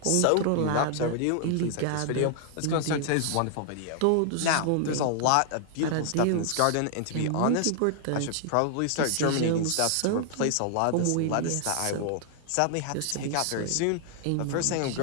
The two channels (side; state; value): both; different; correlation 0.00